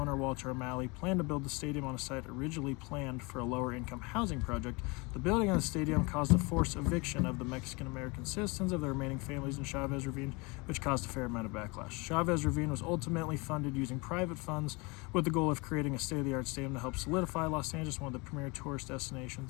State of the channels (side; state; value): right; quieter; 27.3 dB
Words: Walter O'Malley planned to build the stadium on a site originally planned for a lower-income housing project. The building of the stadium caused a forced eviction of the Mexican-American citizens of the remaining families in Chavez Ravine, which caused a fair amount of backlash. Chavez Ravine was ultimately funded using private funds with the goal of creating a state-of-the-art stadium to help solidify Los Angeles, one of the premier tourist